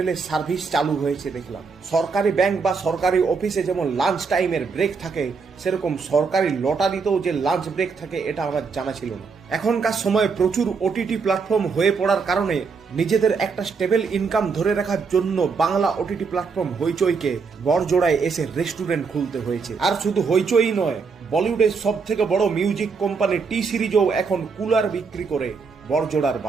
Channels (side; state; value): left; quieter; 5.1 dB